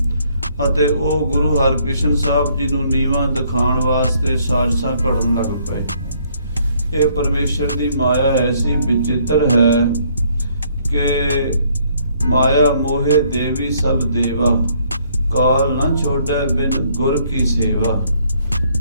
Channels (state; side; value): inverted; both; correlation -0.66